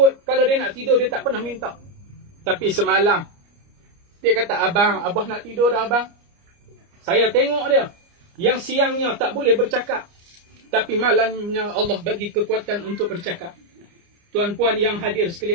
kalau dia nak tidur, dia tak pernah minta. Tapi semalam, dia kata, "Abang, abah nak tidur dah abang." Saya tengok dia. Yang siangnya tak boleh bercakap. Tapi malamnya Allah bagi kekuatan untuk bercakap. Tuan-puan yang hadir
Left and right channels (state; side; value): late; left; 29 ms